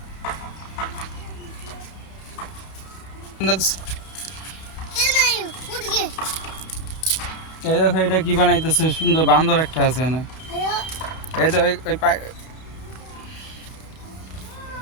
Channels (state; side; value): late; right; 31 ms